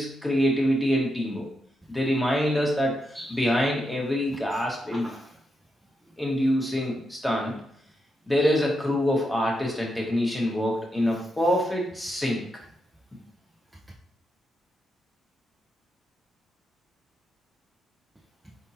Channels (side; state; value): both; normal; correlation 0.84